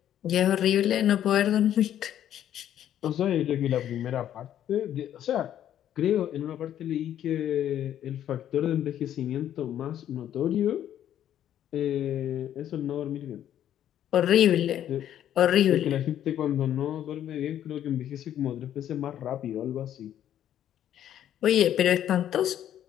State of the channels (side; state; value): right; quieter; 10.9 dB